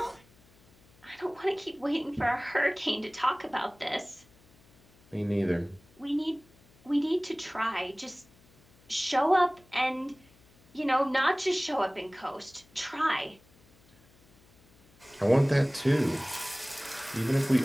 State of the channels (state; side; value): noise; left; hum, 29 dB below the sound